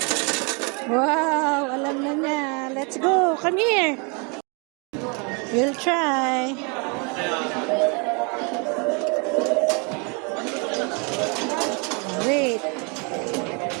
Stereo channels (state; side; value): quieter; left; 33.3 dB